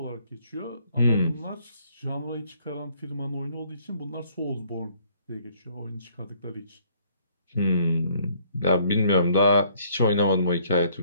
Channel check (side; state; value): both; inverted; correlation -0.62